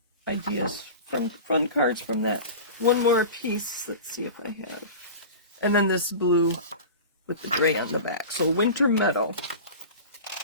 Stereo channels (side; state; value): both; inverted; correlation -0.33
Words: ideas, fun cards from that. One more piece. Let's see if I have. And then this blue with the gray on the back. So Winter Meadow.